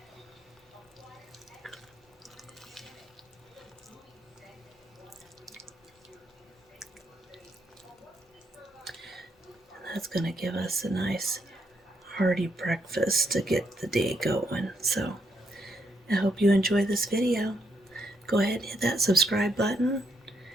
That's going to give us a nice hearty breakfast to get the day going. So I hope you enjoy this video. Go ahead and hit that subscribe button,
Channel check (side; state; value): both; normal; correlation 0.76